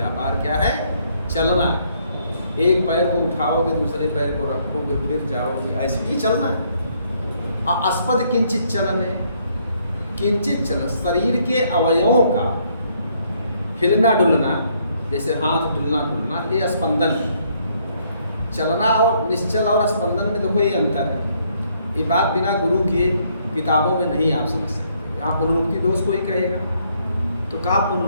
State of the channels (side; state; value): both; inverted; correlation -0.69